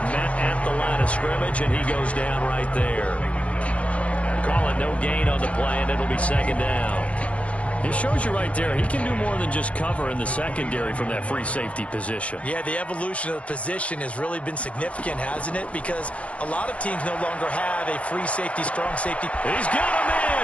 met at the line of scrimmage, and he goes down right there. Call it no gain on the play, and it'll be 2nd down. It shows you right there, he can do more than just cover in the secondary from that free safety position. Yeah, the evolution of the position has really been significant, hasn't it? Because a lot of teams no longer have a free safety, strong safety. He's got a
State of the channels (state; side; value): late; right; 0.063 ms